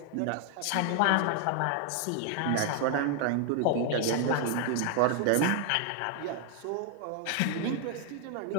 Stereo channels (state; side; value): different; both; correlation 0.00